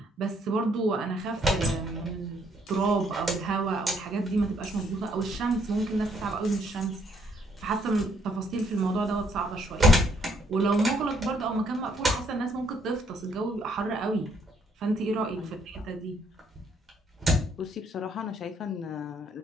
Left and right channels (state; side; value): normal; both; correlation 0.69